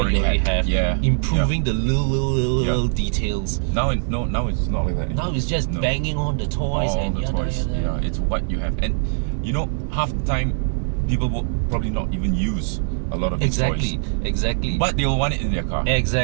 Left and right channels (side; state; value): left; silent; digital silence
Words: have. Yeah. Improving the little details. Now it's not like that. Now it's just banging on the toys Yeah, it's what you have. And half the time people will probably not even use a lot of these toys. Exactly. But they'll want it in their car.